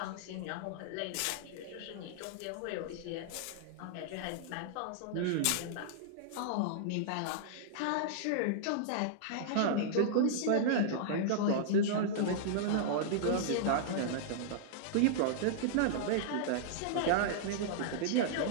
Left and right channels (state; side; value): different; both; correlation -0.01